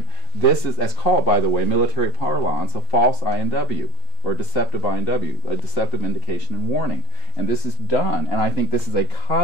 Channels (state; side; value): quieter; left; 3.4 dB